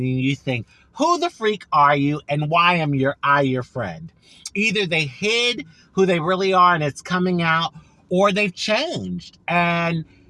you think, who the freak are you and why am I your friend? Either they hid who they really are and it's coming out, or they've changed. And,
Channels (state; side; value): identical; both; correlation 1.00